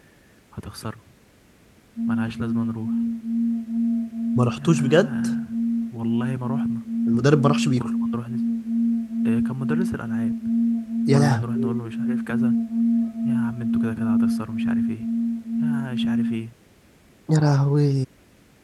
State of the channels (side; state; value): both; identical; correlation 1.00